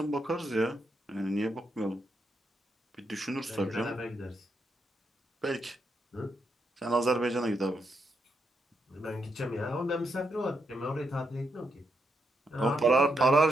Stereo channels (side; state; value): both; normal; correlation 0.81